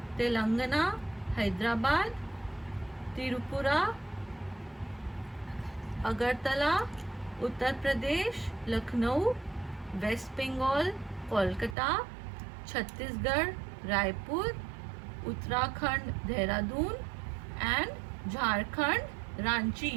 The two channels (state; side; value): drops out; left; at 11.8 s